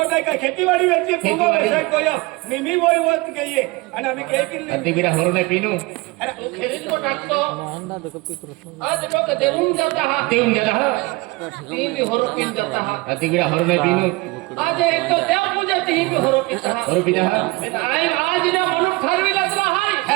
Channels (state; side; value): quieter; left; 23.8 dB